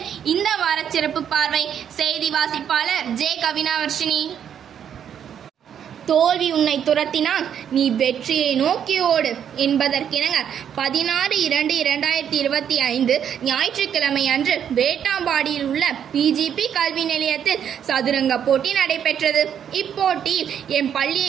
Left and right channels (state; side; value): quieter; left; 8.8 dB